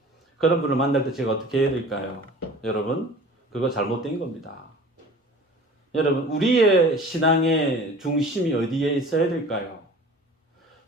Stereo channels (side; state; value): both; normal; correlation 0.43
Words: 그런 분을 만날 때 제가 어떻게 해야 될까요? 여러분, 그거 잘못된 겁니다. 여러분, 우리의 신앙의 중심이 어디에 있어야 될까요?